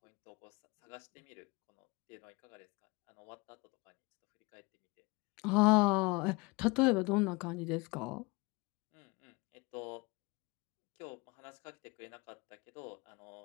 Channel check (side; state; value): right; quieter; 26.0 dB